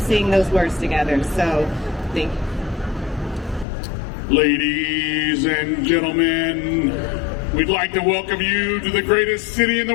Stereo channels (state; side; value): drops out; right; at 3.7 s